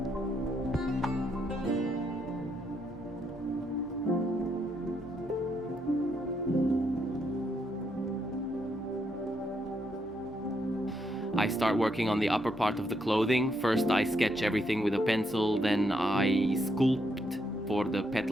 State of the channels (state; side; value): normal; both; correlation 0.77